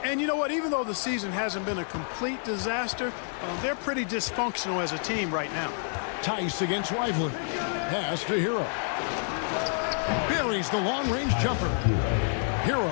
And you know what? Even though the season hasn't been a complete disaster, they're pretty dysfunctional as a team right now. Tice against Lively. Pass to Hero. Buries the long-range jumper.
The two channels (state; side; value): silent; right; 59 dB below the other